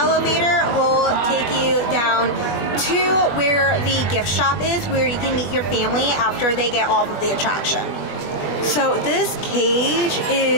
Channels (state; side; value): late; right; 21 ms